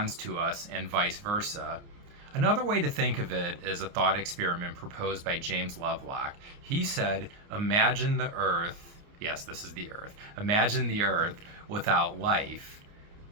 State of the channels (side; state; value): left; late; 29 ms